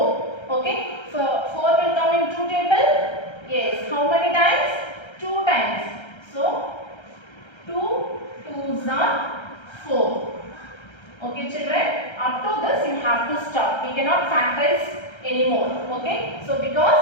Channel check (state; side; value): late; right; 1.3 ms